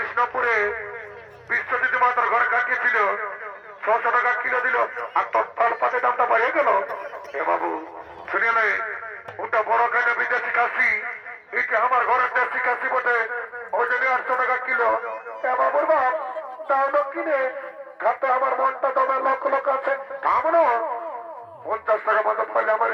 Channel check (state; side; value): identical; both; correlation 1.00